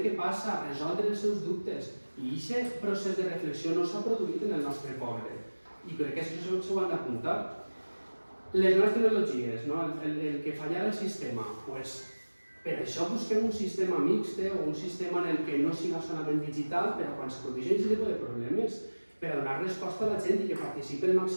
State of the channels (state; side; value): inverted; both; correlation -1.00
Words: què passa, resoldre els seus dubtes. I aquest procés de reflexió no s'ha produït en el nostre poble. I crec que això s'ho han d'apuntar. Les noves tecnologies, el que falla el sistema, per això busquem un sistema mixt o un sistema en el que no sigui solament digital, però quan se produeixen aquest tipus de problemes, per a donar resposta a la gent i que participi el